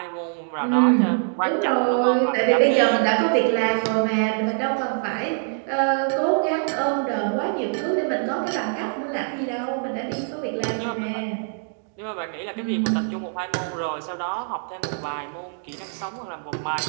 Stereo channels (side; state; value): left; silent; digital silence